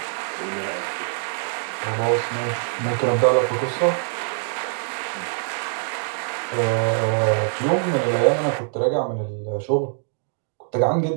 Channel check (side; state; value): left; silent; digital silence